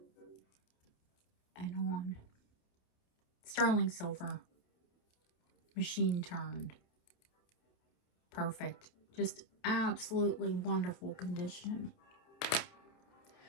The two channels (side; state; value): right; late; 28 ms